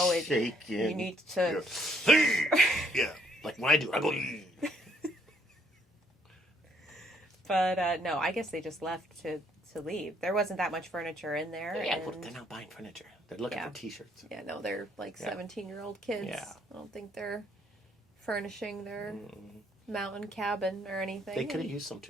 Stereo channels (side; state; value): both; normal; correlation 0.68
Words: Shaking. You need to. Yeah. Like when I do, I go. But no, I guess they just left to leave. There wasn't that much furniture in there. Yeah, and... well, they're not buying furniture. They're looking for T-shirts. Yeah, no, they're like Yeah. 17-year-old kids. Yeah. I don't think they're furnishing their mountain cabin or anything. They could have used some